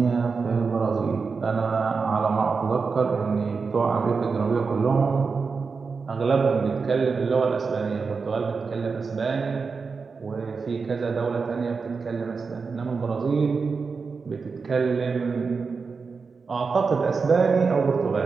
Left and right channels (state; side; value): quieter; left; 4.9 dB